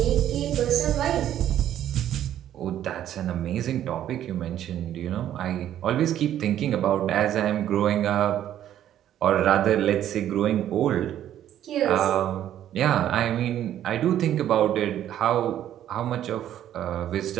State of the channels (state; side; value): quieter; left; 11.3 dB